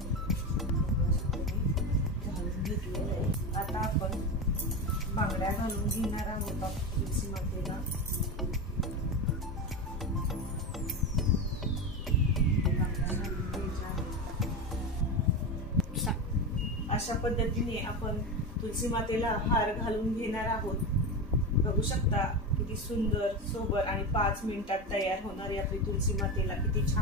घालून घेतलेलं आहे। आता आपण बांगड्या घालून घेणार आहोत तुलसी मातेला। अशा पद्धतीने आपण तुलसी मातेला हार घालून घेणार आहोत। बघू शकता किती सुंदर सोबर आणि 5 मिनिटात तयार होणारी आपली तुलसी मातेला किती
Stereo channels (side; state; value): both; normal; correlation 0.19